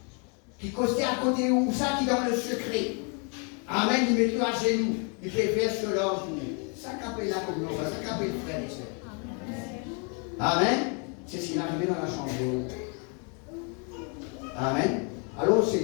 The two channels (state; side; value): quieter; right; 37.2 dB